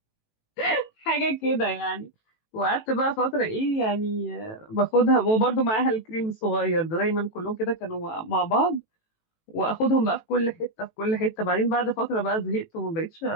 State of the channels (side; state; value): right; late; 18 ms